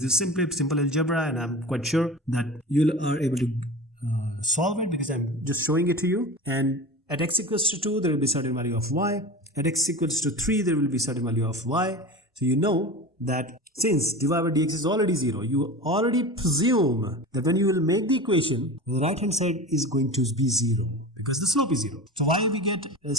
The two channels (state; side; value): normal; both; correlation 0.32